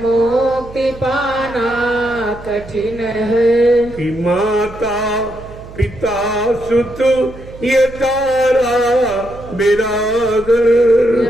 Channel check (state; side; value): noise; right; hum, 17 dB below the sound